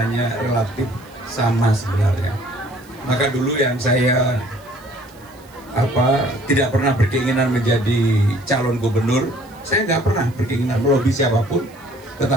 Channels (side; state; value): right; noise; hiss, 27 dB below the sound